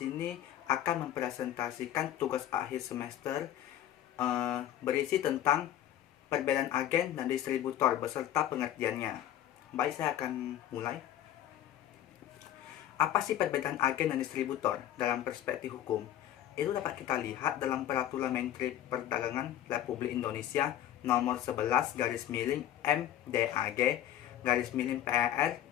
akan mempresentasikan tugas akhir semester berisi tentang perbedaan agen dan distributor beserta pengertiannya. Baik, saya akan mulai. Apa sih perbedaan agen dan distributor dalam perspektif hukum? Itu dapat kita lihat dalam Peraturan Menteri Perdagangan Republik Indonesia nomor 11 garis miring MDAG garis miring PER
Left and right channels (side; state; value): right; quieter; 11.9 dB